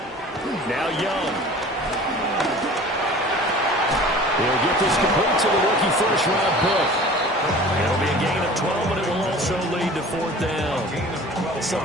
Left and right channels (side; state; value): both; normal; correlation 0.43